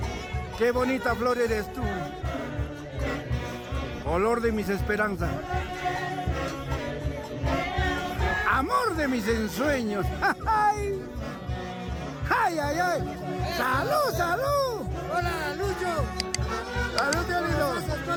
¡Qué bonita flor eres tú! Olor de mis esperanzas. Amor de mis ensueños. ¡Ay! ¡Ay, ay, ay! ¡Salud, salud! Hola, Lucho. ¡Salud, tío lindo! Gracias toda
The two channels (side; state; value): both; identical; correlation 1.00